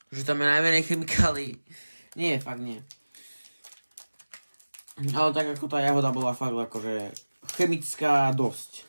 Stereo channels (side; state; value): both; inverted; correlation -1.00